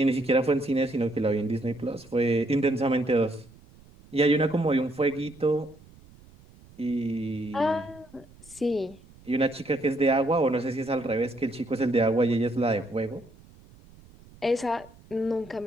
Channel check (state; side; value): noise; right; rumble, 24 dB below the sound